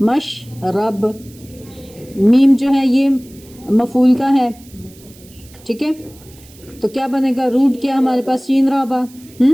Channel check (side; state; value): right; noise; hiss, 24 dB below the sound